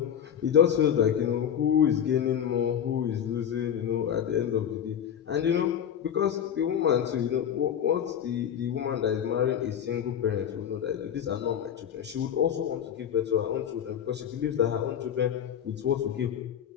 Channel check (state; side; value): quieter; right; 9.1 dB